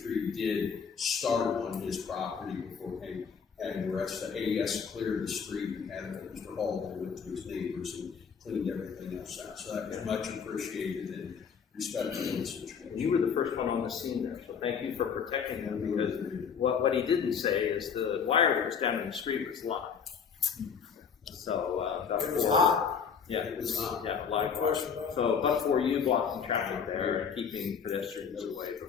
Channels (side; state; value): right; quieter; 6.6 dB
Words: tree did start on his property before he had the rest of AES cleared the street and had Mr. Hall then went to his neighbors and cleaned everything else out. So that was much appreciated and respected in the situation. You were the first one on the scene there, so thank you for protecting him, because what he didn't say is the wire that was down in the street was live. So, It was hot. Yeah, It was hot. Yeah, live. No question about it. So, but for you blocking traffic there and keeping pedestrians away